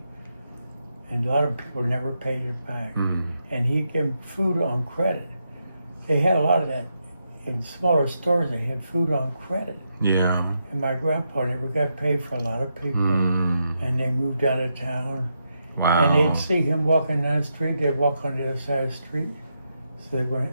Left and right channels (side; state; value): both; inverted; correlation -0.83